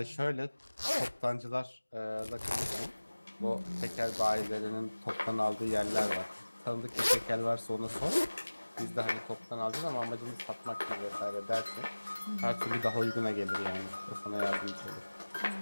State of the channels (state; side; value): inverted; both; correlation -1.00